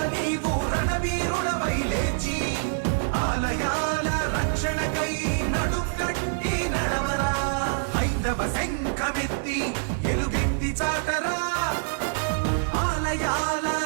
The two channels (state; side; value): silent; left; 61 dB below the other